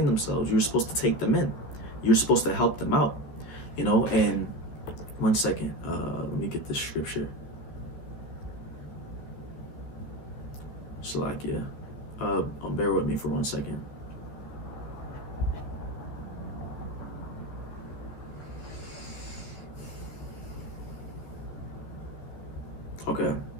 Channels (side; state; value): right; late; 14 ms